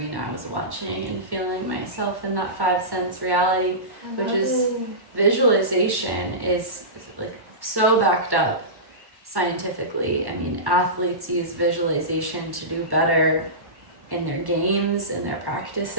I was watching, and feeling myself in that 5 sense reality, which is visualization is like so backed up scientifically. I mean, athletes use visualization to do better in their games, in their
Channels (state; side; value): late; left; 1.1 ms